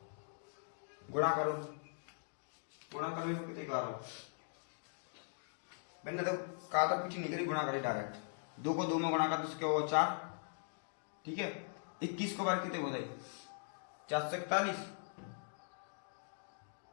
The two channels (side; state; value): right; silent; digital silence